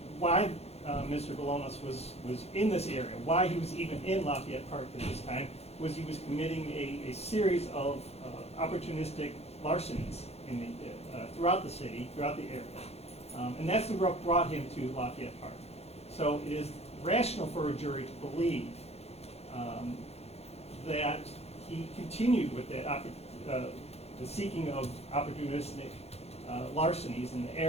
why Mr. Bolanos was in this area, why he was even in Lafayette Park at this time, was he was committing a series of opportunistic larcenies throughout the city, throughout the area. And that's what brought him to Lafayette Park. So it is rational for a jury to believe that he continued with that the seeking of opportunistic larcenies in the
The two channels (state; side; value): late; right; 0.30 ms